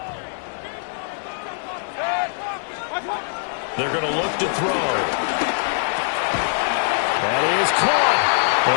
They're going to look to throw. That is caught.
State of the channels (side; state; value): right; silent; digital silence